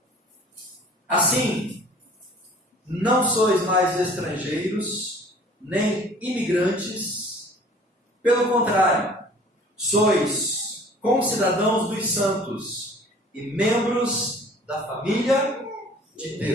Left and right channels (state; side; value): normal; both; correlation 0.49